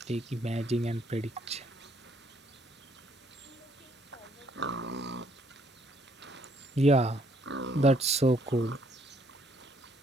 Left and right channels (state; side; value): normal; both; correlation 0.67